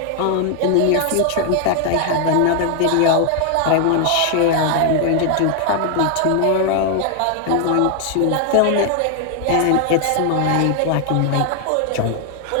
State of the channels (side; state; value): both; different; correlation 0.00